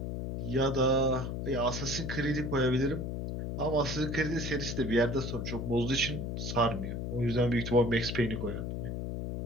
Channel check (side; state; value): left; noise; hum, 4 dB below the sound